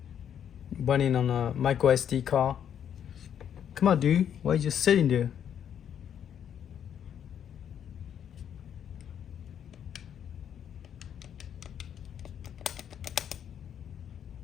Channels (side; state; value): right; quieter; 9.0 dB